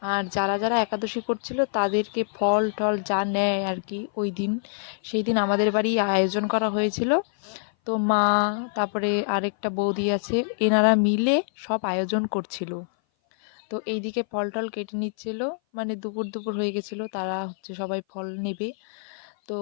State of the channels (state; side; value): silent; right; 57 dB below the other